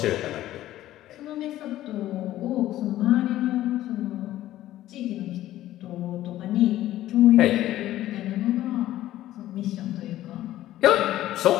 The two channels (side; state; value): right; quieter; 14.1 dB